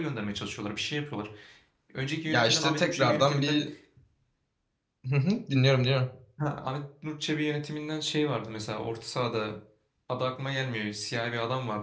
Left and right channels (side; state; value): both; identical; correlation 1.00